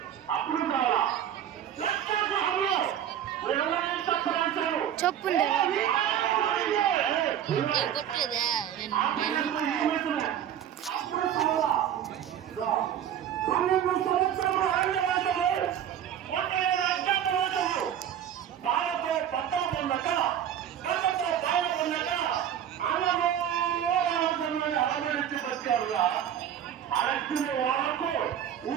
అప్పుడు కావాలా చెప్పుండే బాలతో పట్టణ పొందక కళ్ళతో బాల పొందక అలమరించి బతికారుగా అరచిన వాళ్ళకు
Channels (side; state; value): left; quieter; 9.9 dB